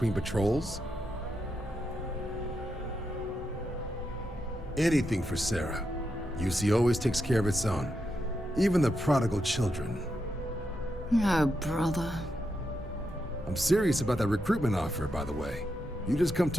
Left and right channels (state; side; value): normal; both; correlation 0.84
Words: patrols. Anything for Sarah. UC always takes care of its own. Even the prodigal children. Oh, brother. I'm serious about that recruitment offer, by the way. You just come